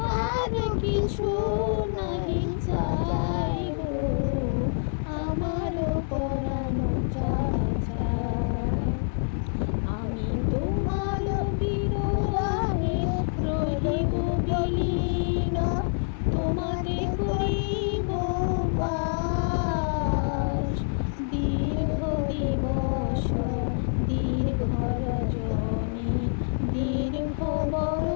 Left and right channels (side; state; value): right; silent; 60 dB below the other